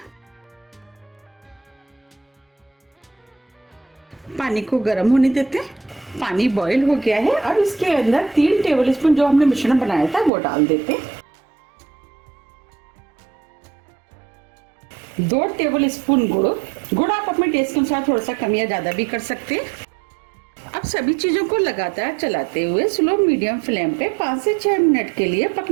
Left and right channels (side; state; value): left; drops out; at 10.3 s